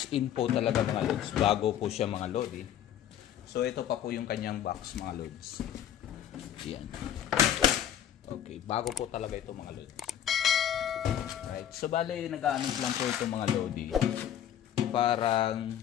in po talaga mga lods, bago po siya mga lodi. So ito pa po yung kanyang box mga lods. Yan. Okay, bago po talaga ito mga lods. Right, so bale nag-aanos lang po ito mga lodi. Parang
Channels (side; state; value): right; quieter; 10.4 dB